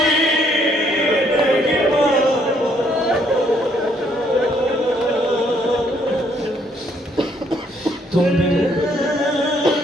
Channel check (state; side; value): normal; both; correlation 0.68